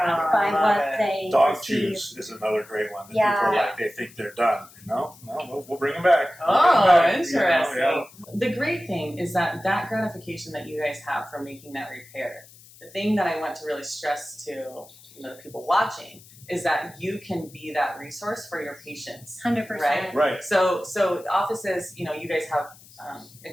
Oh, I by love what it. they Dog receive. chews is another great one that Yeah. people are like, they think they're done. No, we'll bring them back. We'll bring 'em Oh, back, interesting. you know, The great thing is that gratification that you guys have from making that repair, the thing that I want to really stress to the people watching is that you can be that resource for your patients. 100%. Right. So offices, you guys have a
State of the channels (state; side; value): noise; left; hiss, 23 dB below the sound